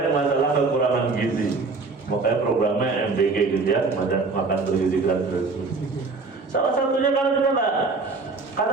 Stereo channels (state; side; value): quieter; left; 4.0 dB